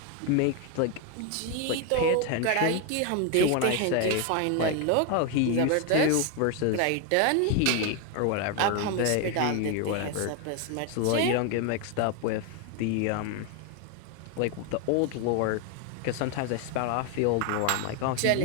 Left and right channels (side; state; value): both; different; correlation 0.01